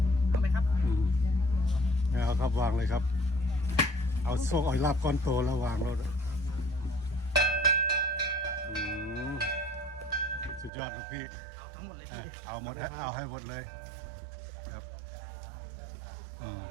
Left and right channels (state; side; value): drops out; left; at 10.7 s